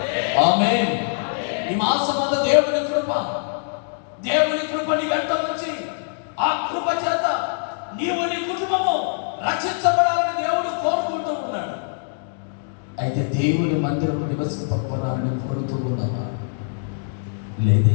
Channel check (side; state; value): right; silent; digital silence